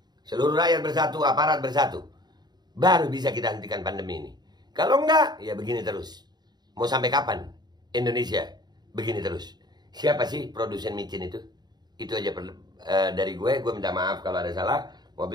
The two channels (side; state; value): left; late; 0.20 ms